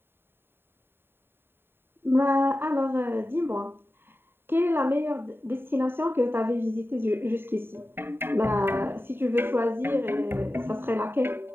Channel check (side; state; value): left; late; 0.11 ms